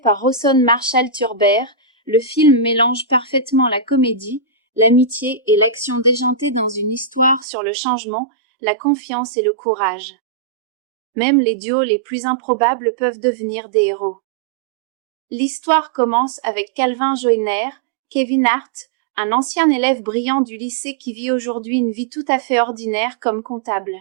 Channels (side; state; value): left; drops out; at 7.5 s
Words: Rawson Marshall Turber, le film mélange parfaitement la comédie, l'amitié et l'action déjantée dans une histoire sur le changement, la confiance et le courage. Même les duos les plus improbables peuvent devenir des héros. L'histoire commence avec Calvin Joyner, Kevin Hart, un ancien élève brillant du lycée qui vit aujourd'hui une vie tout à fait ordinaire comme comptable.